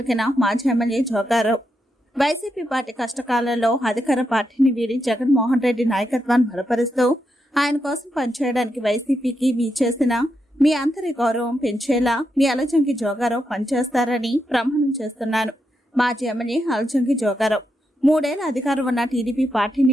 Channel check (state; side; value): normal; both; correlation 0.83